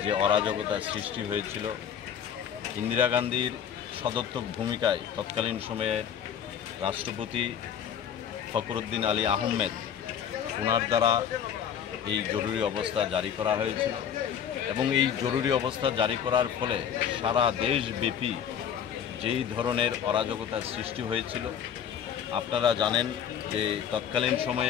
যে অরাজকতার সৃষ্টি হয়েছিল, ইন্দিরা গান্ধীর সদর্থক ভূমিকায় তৎকালীন সময়ের রাষ্ট্রপতি ফখরুদ্দিন আলী আহমেদ ওনার দ্বারা এই জরুরি অবস্থা জারি করা হয়েছিল এবং এই জরুরি অবস্থা জারি করার ফলে সারা দেশব্যাপী যেই ধরনের অরাজকতার সৃষ্টি হয়েছিল, আপনারা জানেন যে তৎকালীন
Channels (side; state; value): right; quieter; 8.6 dB